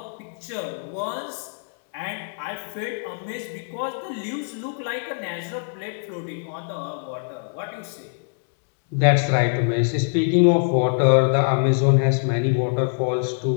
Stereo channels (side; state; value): right; silent; 63 dB below the other